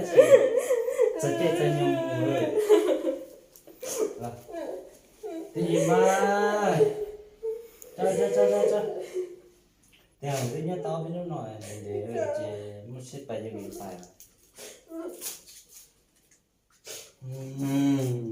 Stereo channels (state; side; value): identical; both; correlation 1.00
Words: sợ chết cho nhau rồi. Cái gì mà cho theo cái nhát to với nó nói để chế một xếp bài cho mình phải